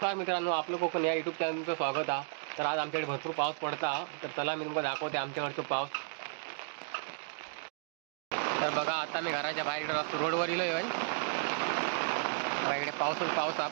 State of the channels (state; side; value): silent; left; digital silence